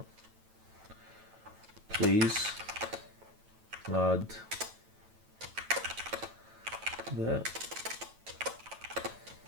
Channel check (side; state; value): left; late; 9.1 ms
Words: please add the